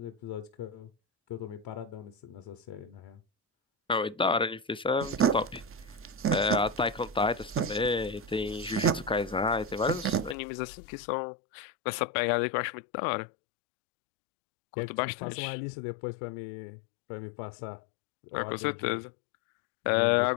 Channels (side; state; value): right; drops out; at 10.4 s